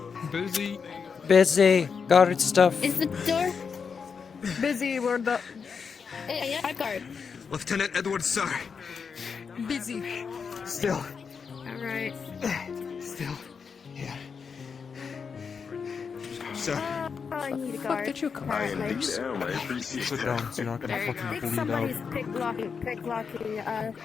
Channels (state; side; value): quieter; right; 5.9 dB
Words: Busy. Busy. Guard stuff. Is the door busy? Where the? Yeah, I guard. Lieutenant Edwards, sir. Busy. Still. Alright. Still. Yeah. Sir. I need a Fuck guard. did you come Alright, from? Sit down, so you're not gonna I fucking think bleed somebody's out. picklocking, I